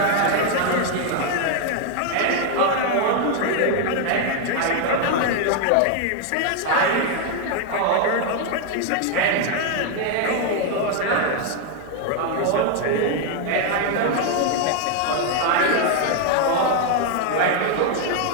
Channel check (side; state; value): both; different; correlation 0.01